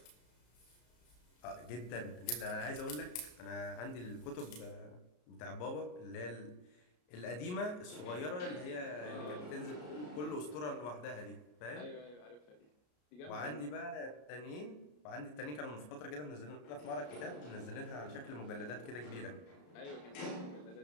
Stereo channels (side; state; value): right; late; 33 ms